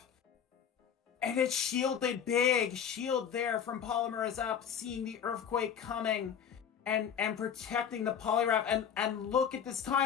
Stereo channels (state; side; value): quieter; right; 8.1 dB